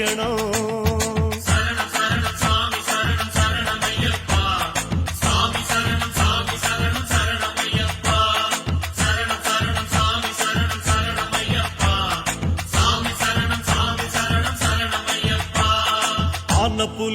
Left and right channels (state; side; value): identical; both; correlation 1.00